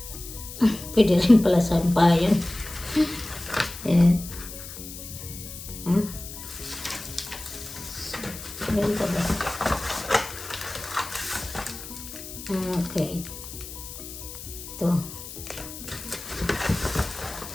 Pwede rin pala sa bayan. Ayan. Ayan ka ba? Okay. Ito.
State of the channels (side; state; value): left; noise; hiss, 12 dB below the sound